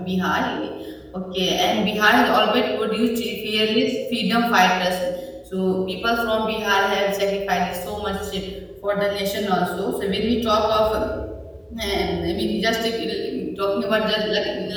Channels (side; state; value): both; identical; correlation 1.00